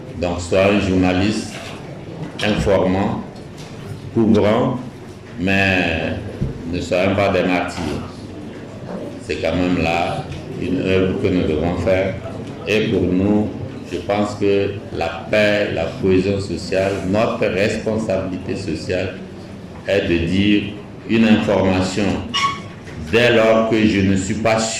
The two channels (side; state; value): both; identical; correlation 1.00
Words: Donc, sois un journaliste informant, couvrant, mais ne soyons pas des martyrs. C'est quand même là une œuvre que nous devons faire. Et pour nous, je pense que la paix, la cohésion sociale, notre responsabilité sociale est de dire une information dès lors que je ne suis pas